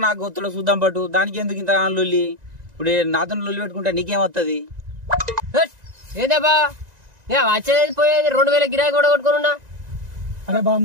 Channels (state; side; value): late; left; 1.9 ms